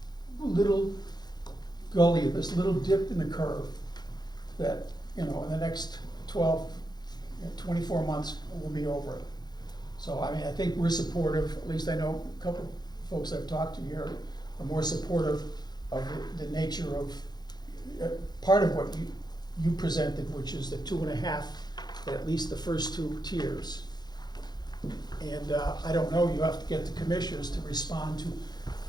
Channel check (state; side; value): late; right; 0.20 ms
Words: little gully, this little dip in the curve that, in the next 12, 24 months, we'll be over it. So, I mean, I think we're supportive, at least I know a couple folks I've talked to here are more supportive of the nature of, part of what you presented, which is the 2.5, at least the first 2 tiers. And I don't know, you have to get the commissioners to respond